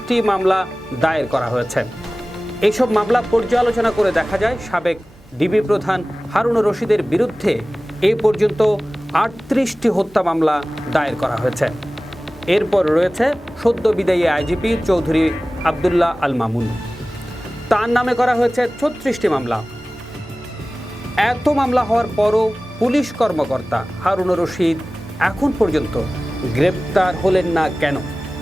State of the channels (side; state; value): both; normal; correlation 0.97